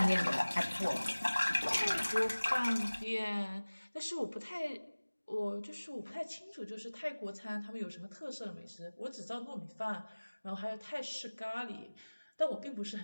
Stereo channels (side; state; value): both; inverted; correlation -1.00